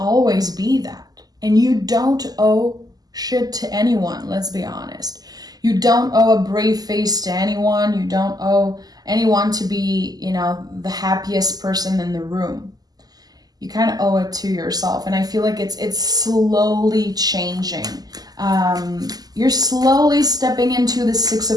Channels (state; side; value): late; left; 0.19 ms